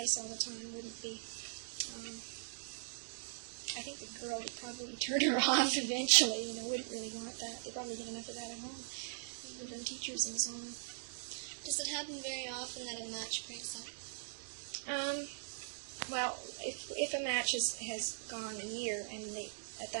all the time wouldn't be. I think the girl would probably turn her off eventually. Wouldn't really want that. They probably get enough of that at home, from teachers and so on. Does it happen very often that a match breaks up? Well, if a match has gone a year, and at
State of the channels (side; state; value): left; silent; digital silence